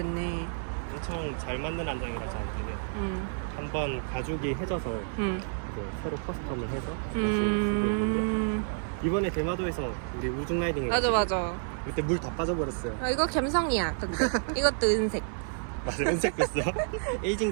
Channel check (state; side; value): silent; left; 58 dB below the other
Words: 엄청 잘 맞는 안장이라 저한테는. 한번 가죽이 해져서 이제 새로 커스텀을 해서 다시 쓰고 있는데 이번에 대마도에서 우리 우중 라이딩 맞아. 그때 물 다 빠져버렸어요. 이거 갬성이야. 근데 이것도 은색. 맞아, 은색 됐어. 에이징